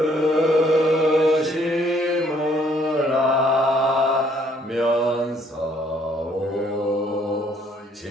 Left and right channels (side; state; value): both; normal; correlation 0.65